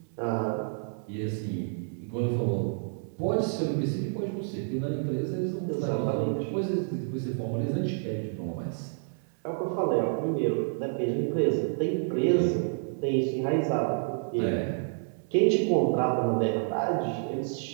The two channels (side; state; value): left; silent; 59 dB below the other